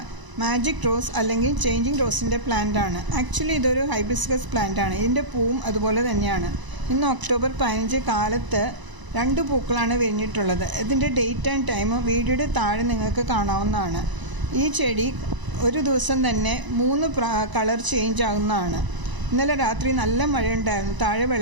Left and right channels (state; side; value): late; left; 1.0 ms